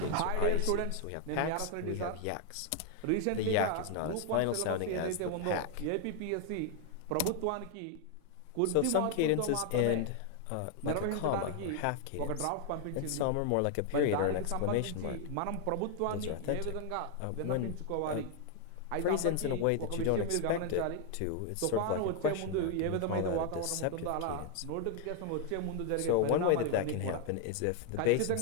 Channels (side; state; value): both; different; correlation 0.00